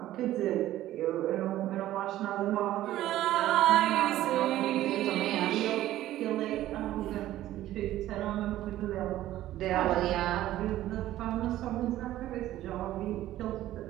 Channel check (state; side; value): quieter; left; 14.1 dB